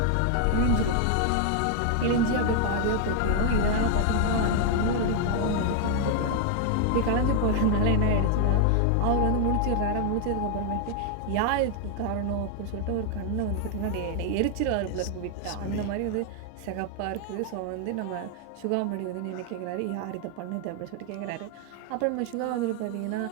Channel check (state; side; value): different; both; correlation 0.00